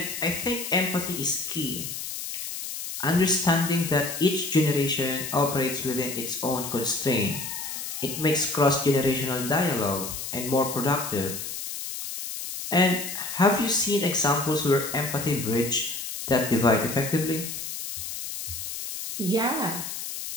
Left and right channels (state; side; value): noise; left; hiss, 7 dB below the sound